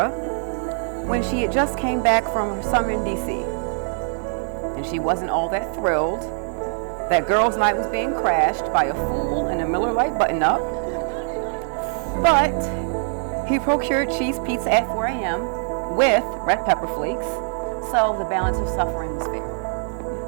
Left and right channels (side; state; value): left; silent; 60 dB below the other